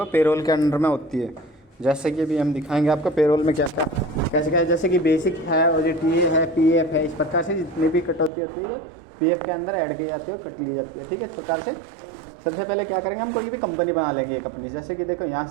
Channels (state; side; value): drops out; left; at 8.3 s